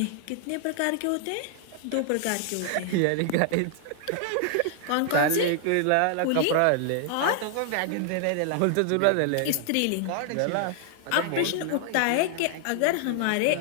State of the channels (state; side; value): different; both; correlation -0.01